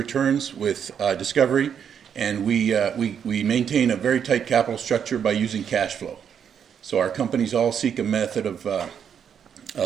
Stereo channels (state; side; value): quieter; left; 8.0 dB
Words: with discovery, and we maintain a very tight capital structure by using cash flow. So our companies all seek a method of